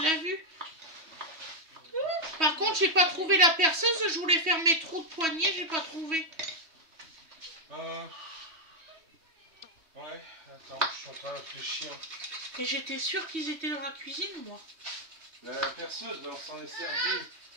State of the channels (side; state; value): left; late; 3.1 ms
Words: vu? Par contre, j'ai pas trouvé la perceuse. Je voulais faire mes trous de poignée, j'ai pas trouvé. Ouais, attends, je suis en train de réfléchir. Et j'étais sûre qu'ils étaient dans la cuisine, moi. La perceuse, on s'en est servi.